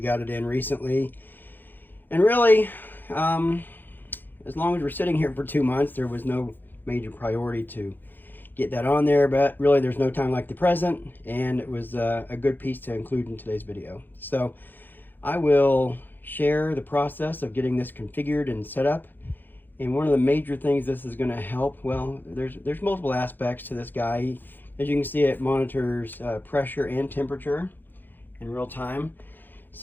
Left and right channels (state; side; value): late; right; 0.091 ms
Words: got it in recently. And really, as long as we're sitting here for 2 months, there was no major priority to get that on there, but really there's no time like the present, and it was a good piece to include in today's video. So I will share the process of getting this configured and set up. And one of the major things this is going to help, well, there's multiple aspects to this guy. As you can see, it monitors pressure and temperature in real time.